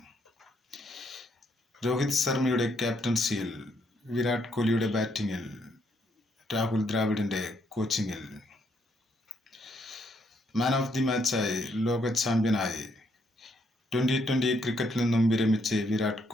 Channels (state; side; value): normal; both; correlation 0.74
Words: രോഹിത് ശർമ്മയുടെ ക്യാപ്റ്റൻസിയിൽ, വിരാട് കോഹ്ലിയുടെ ബാറ്റിങ്ങിൽ, രാഹുൽ ദ്രാവിഡിൻ്റെ കോച്ചിങ്ങിൽ. മാൻ ഓഫ് ദി മാച്ചായി, ലോക ചാമ്പ്യനായി 2020 ക്രിക്കറ്റിൽ നിന്നും വിരമിച്ച് വിരാട്